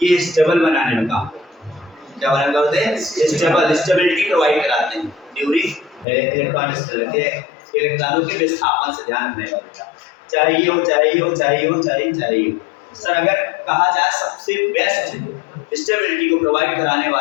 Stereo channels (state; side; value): drops out; right; at 6.1 s